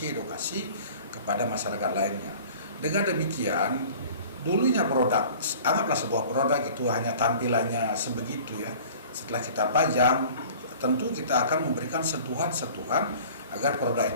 kepada masyarakat lainnya. Dengan demikian, dulunya produk, anggaplah sebuah produk itu hanya tampilannya sebegitu ya. Setelah kita pajang, tentu kita akan memberikan sentuhan-sentuhan agar produk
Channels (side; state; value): both; inverted; correlation -0.46